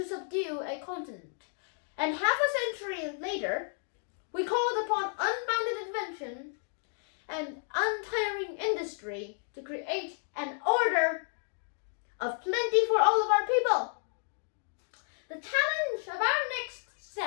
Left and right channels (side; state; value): right; silent; 56 dB below the other